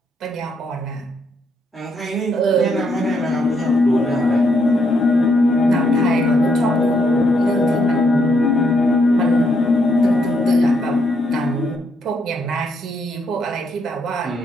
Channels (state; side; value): normal; both; correlation 0.75